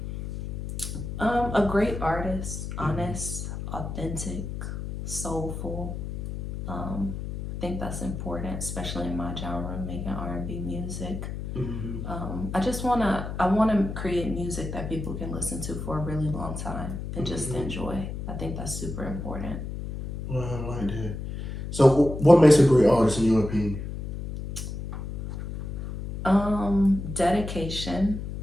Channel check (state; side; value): noise; left; hum, 6 dB below the sound